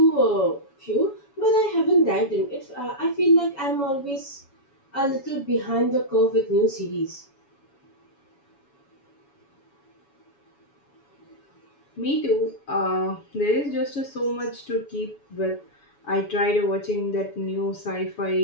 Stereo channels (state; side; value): late; right; 7.1 ms